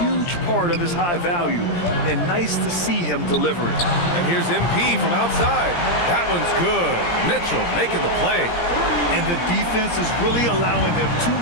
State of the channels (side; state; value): right; late; 17 ms